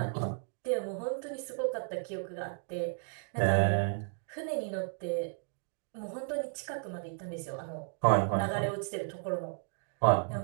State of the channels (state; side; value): silent; left; 55 dB below the other